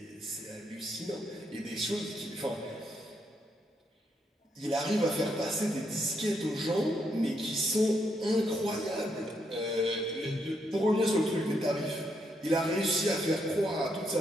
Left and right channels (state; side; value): normal; both; correlation 0.77